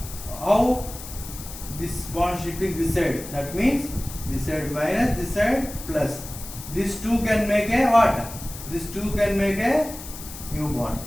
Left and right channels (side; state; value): left; noise; hiss, 13 dB below the sound